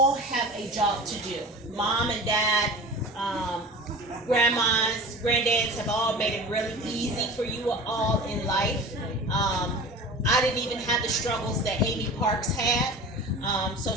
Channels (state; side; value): normal; both; correlation 0.36